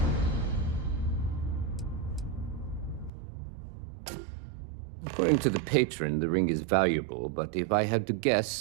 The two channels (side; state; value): left; drops out; at 3.1 s